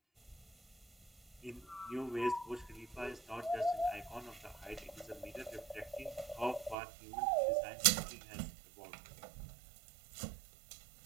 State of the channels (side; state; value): left; drops out; at 6.8 s